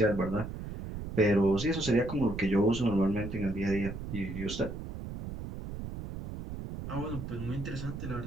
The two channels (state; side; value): noise; right; rumble, 8 dB below the sound